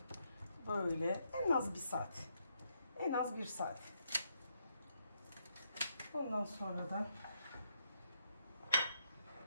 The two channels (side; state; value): both; inverted; correlation -0.77